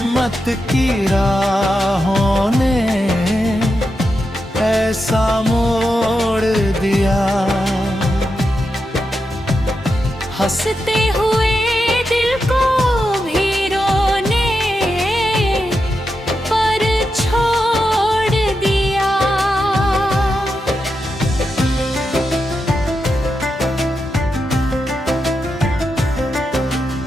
की राहों ने ऐसा मोड़ दिया। हंसते हुए दिल को भी रोने पर छोड़ दिया।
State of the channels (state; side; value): normal; both; correlation 0.87